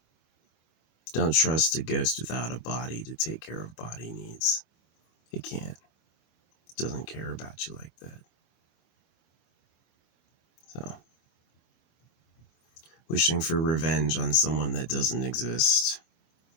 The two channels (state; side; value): late; right; 25 ms